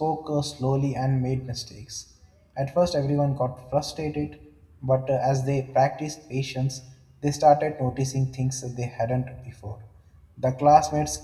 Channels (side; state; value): both; identical; correlation 1.00